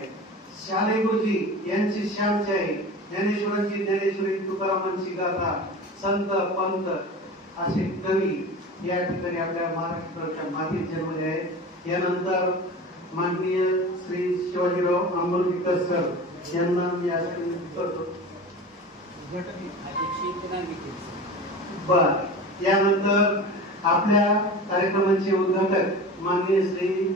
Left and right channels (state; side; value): normal; both; correlation 0.33